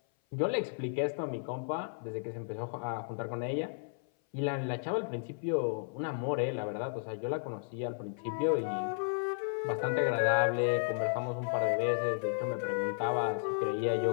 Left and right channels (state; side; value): silent; right; 55 dB below the other